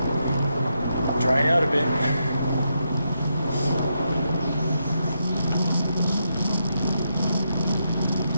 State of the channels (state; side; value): inverted; both; correlation -0.82